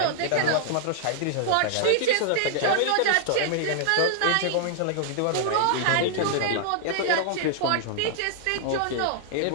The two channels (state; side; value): different; both; correlation -0.01